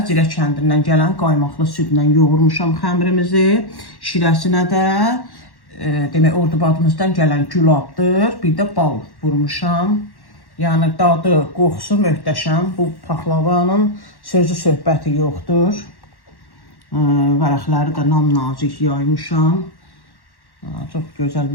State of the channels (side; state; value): right; late; 1.1 ms